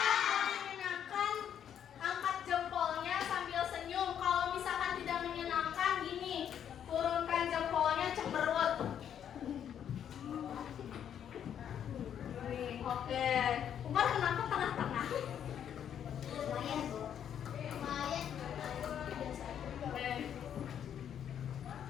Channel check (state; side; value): quieter; right; 9.2 dB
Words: Menyenangkan, angkat jempolnya sambil senyum. Kalau misalkan tidak menyenangkan, gini, turunkan jempolnya cemberut. Oke, Umar kenapa tengah-tengah?